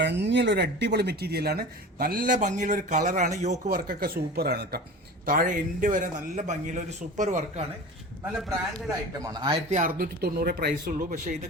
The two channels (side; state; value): both; normal; correlation 0.36